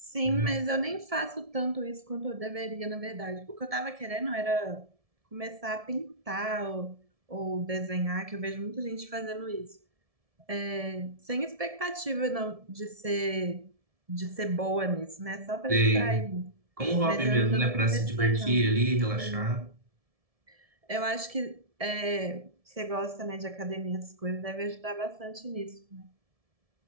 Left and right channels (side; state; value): left; late; 1.7 ms